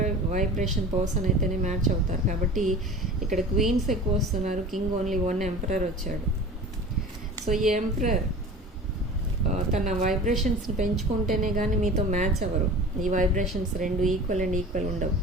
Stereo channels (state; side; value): normal; both; correlation 0.38